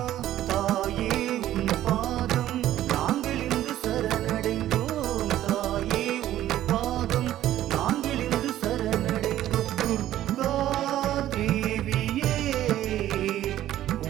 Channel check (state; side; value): quieter; left; 13.0 dB